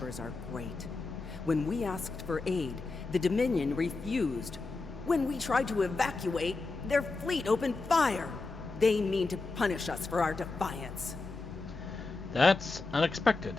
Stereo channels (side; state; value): right; quieter; 3.7 dB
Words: are great. When we asked for aid, the Dominion refused. When we tried to evacuate, their fleet opened fire. They mean to punish us for our defiance. That's unexpected.